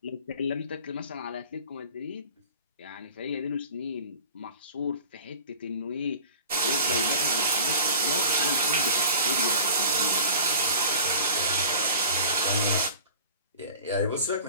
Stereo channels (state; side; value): inverted; both; correlation -0.42